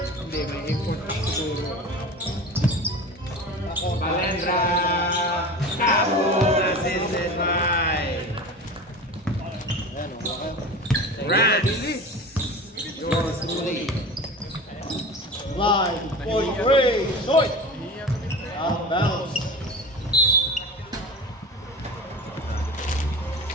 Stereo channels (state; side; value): normal; both; correlation 0.33